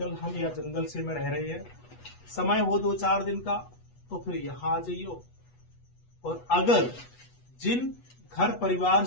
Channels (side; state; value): right; late; 8.2 ms